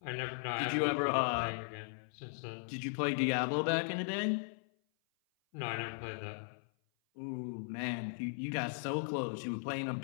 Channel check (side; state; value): right; silent; 53 dB below the other